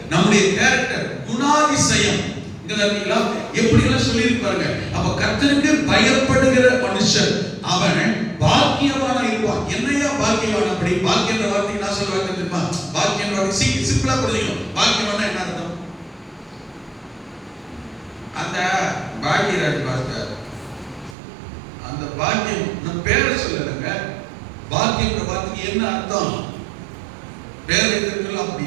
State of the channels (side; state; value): left; drops out; at 21.2 s